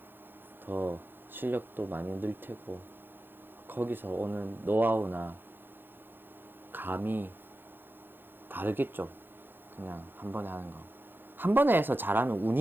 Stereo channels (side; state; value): left; late; 0.099 ms